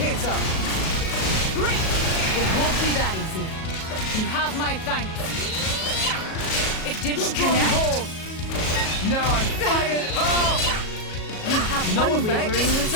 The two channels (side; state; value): right; late; 37 ms